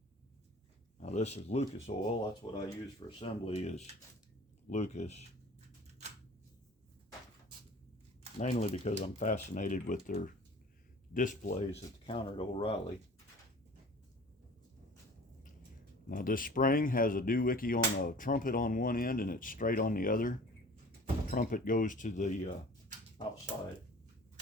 Now this is Lucas oil. That's what I use for assembly, is Lucas. Mainly because I'm fascinated with their displays at the counter at O'Reilly. Now this spring has a doohickey on a trumpet on one end and it's straight on the other. The trumpet goes to the outside.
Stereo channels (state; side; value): normal; both; correlation 0.44